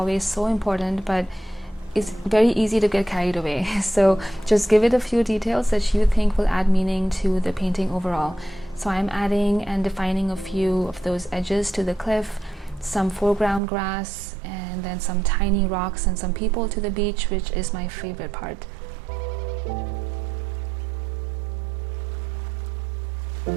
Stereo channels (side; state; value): left; drops out; at 13.6 s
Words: so important, but it's very easy to get carried away. So just give it a few details that you think will add meaning to the painting overall. So I'm adding and defining a few of those edges to the cliff, some foreground grass, and then some tiny rocks and some people to the beach, which is my favorite part.